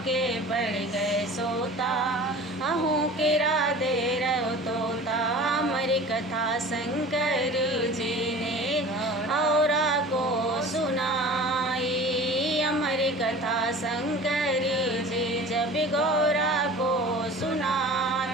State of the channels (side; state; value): both; normal; correlation 0.40